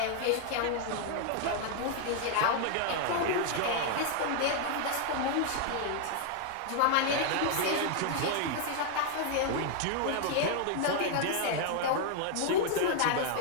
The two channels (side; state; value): both; different; correlation 0.00